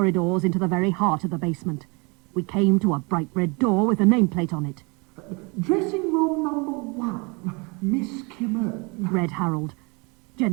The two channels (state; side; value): quieter; left; 29.8 dB